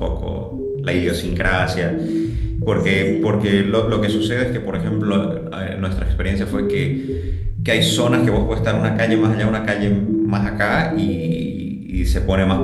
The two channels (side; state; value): both; identical; correlation 1.00